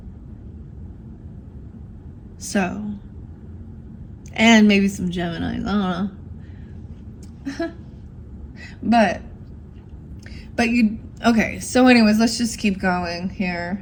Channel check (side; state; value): both; identical; correlation 1.00